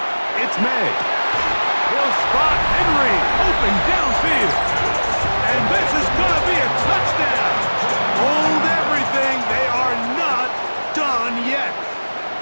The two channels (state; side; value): inverted; both; correlation -1.00